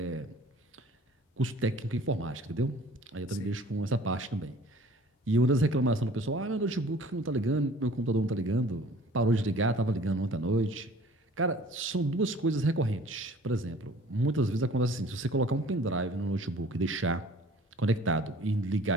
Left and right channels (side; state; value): both; normal; correlation 0.50